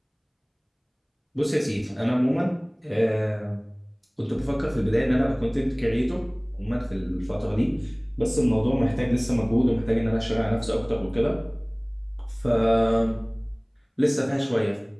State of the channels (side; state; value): both; identical; correlation 1.00